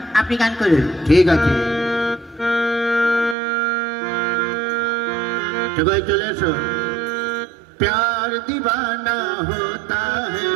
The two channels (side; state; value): left; drops out; at 3.4 s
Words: আপনি গান করুন। ঠিক আছে, সবাই চলে এসো। प्यार दीवाना होता है,